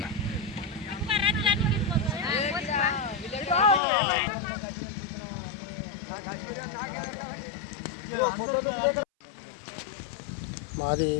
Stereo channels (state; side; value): drops out; right; at 3.8 s